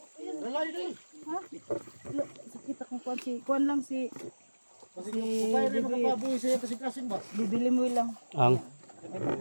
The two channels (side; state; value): both; inverted; correlation -1.00